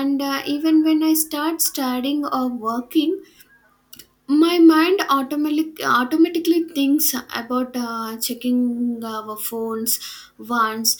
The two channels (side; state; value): both; identical; correlation 1.00